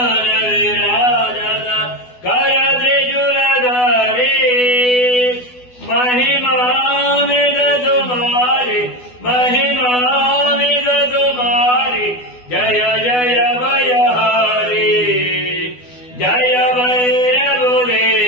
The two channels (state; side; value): late; right; 12 ms